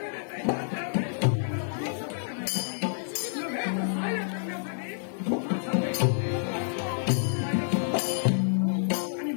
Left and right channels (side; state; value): right; silent; digital silence